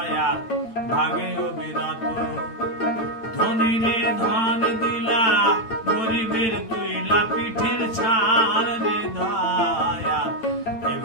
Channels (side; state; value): right; late; 9.0 ms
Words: ভাঙে অবিরত ধনীরে ধন দিলা গরিবের তুইলা পিঠের ছাড় রে দয়া